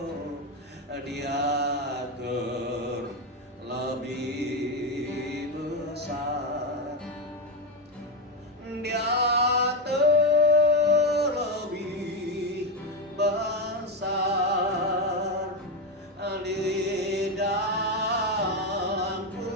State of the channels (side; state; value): both; normal; correlation 0.10